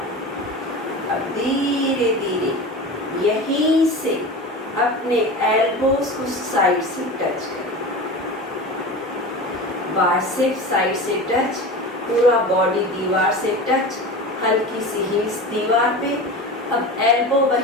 अब धीरे धीरे यहीं से अपने एल्बोज को साइड से टच करें, बाइसेप साइड से टच, पूरा बॉडी दीवार से टच, हल्की सी हील्स दीवार पे। अब एल्बो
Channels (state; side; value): normal; both; correlation 0.30